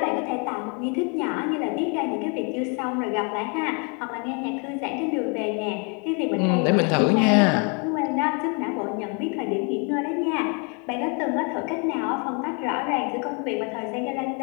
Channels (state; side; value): quieter; right; 35.5 dB